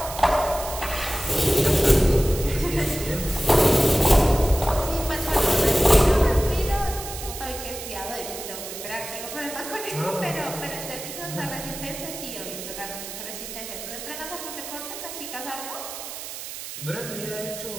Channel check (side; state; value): right; noise; hiss, 9 dB below the sound